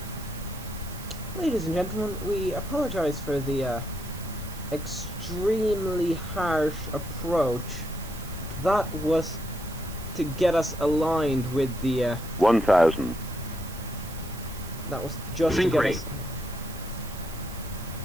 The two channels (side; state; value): right; noise; hiss, 15 dB below the sound